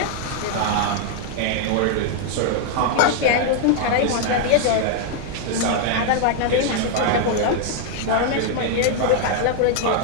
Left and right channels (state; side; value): different; both; correlation 0.00